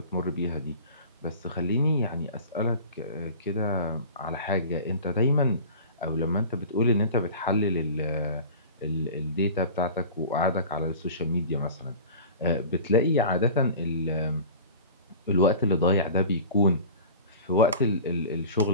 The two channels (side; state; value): both; inverted; correlation -0.39